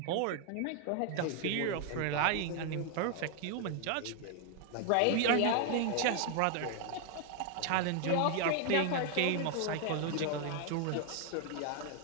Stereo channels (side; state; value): both; different; correlation 0.01